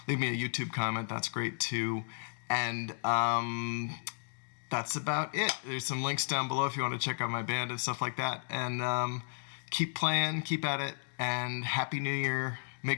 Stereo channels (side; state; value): right; silent; digital silence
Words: Leave me a YouTube comment. That's great too. And that's about it. There's some links down below if you want to check out my band and stuff like that. And keep playing, keep at it, and Happy New Year.